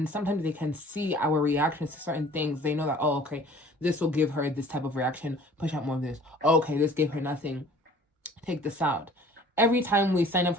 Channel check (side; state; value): both; normal; correlation 0.50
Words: sometimes they can see our reactions to certain things. They know that, oh, okay, this will give her this type of reaction. Push out more of this. Oh, okay, this gave her nothing. Take this out. Every time we sign up